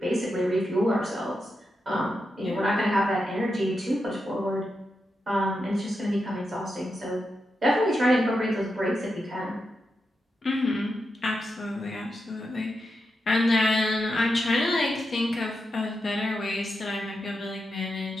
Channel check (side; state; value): both; normal; correlation 0.87